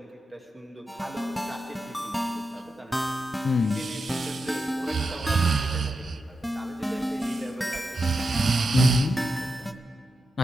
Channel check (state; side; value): normal; both; correlation 0.87